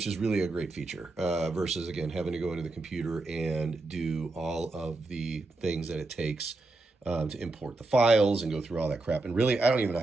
is really a great feature versus, again, having to go into the computer and do all of the things that it takes to import the files and go through all that crap. And really, I don't even know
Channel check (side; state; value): left; quieter; 3.1 dB